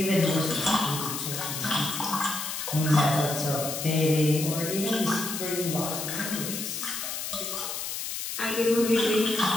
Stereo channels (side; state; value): left; noise; hiss, 5 dB below the sound